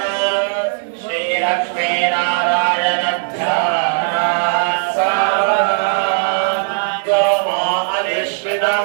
ಶ್ರೀ ಲಕ್ಷ್ಮೀ ನಾರಾಯಣ ಧ್ಯಾನ ಸಾವಧಾನ ತ್ವಮೋ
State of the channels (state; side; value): silent; left; digital silence